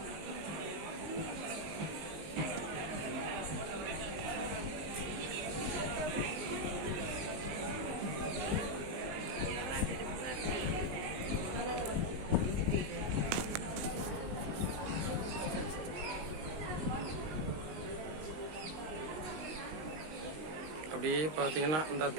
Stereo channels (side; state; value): left; late; 19 ms